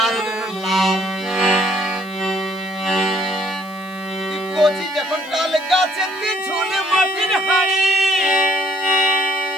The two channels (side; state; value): right; noise; hiss, 26 dB below the sound